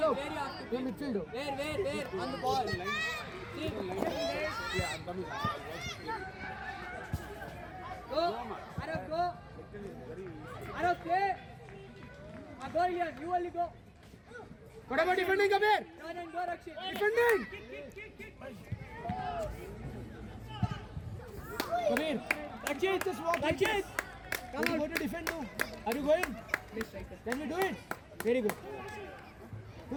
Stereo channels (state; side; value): identical; both; correlation 1.00